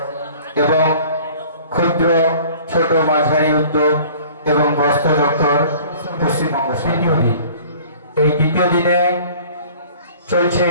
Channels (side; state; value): both; inverted; correlation -0.49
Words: এবং ক্ষুদ্র ছোট মাঝারি উদ্যোগ এবং বস্ত্র দপ্তর পশ্চিমবঙ্গ। এই দ্বিতীয় দিনে চলছে